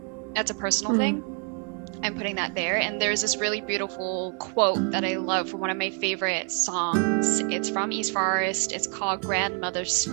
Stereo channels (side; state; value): left; quieter; 39.8 dB